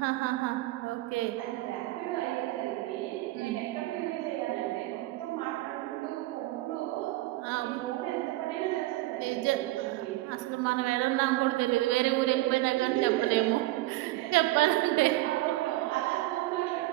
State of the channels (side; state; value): left; quieter; 18.1 dB